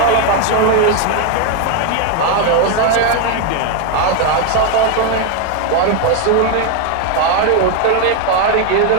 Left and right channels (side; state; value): both; different; correlation 0.01